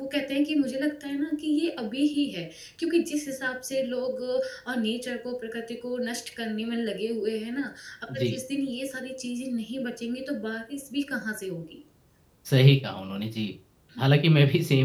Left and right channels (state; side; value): identical; both; correlation 1.00